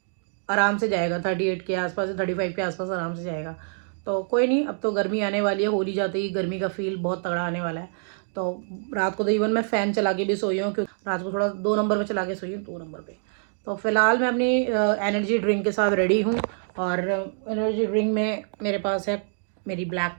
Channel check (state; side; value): silent; left; digital silence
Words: आराम से जाएगा 38 के आसपास, 35 के आसपास आराम से जाएगा। तो कोई नहीं, अब तो गर्मी आने वाली है। होली जाते ही गर्मी का फील बहुत तगड़ा आने वाला है। तो रात को तो इवन मैं फ़ैन चला के भी सोई हूँ, क्योंकि रात को थोड़ा 2 नंबर पे चला के सोई हूँ, 2 नंबर पे। तो फिलहाल मैं अपनी एनर्जी ड्रिंक के साथ रेडी हूँ। और एनर्जी ड्रिंक में मेरे पास है मेरी ब्लैक